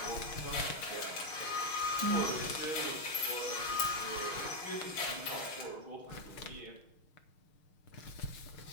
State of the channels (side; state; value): right; late; 6.4 ms